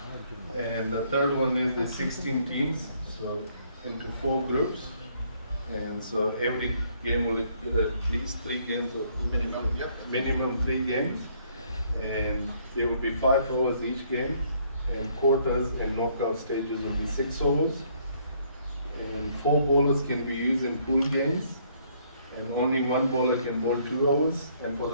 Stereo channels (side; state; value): both; inverted; correlation -0.66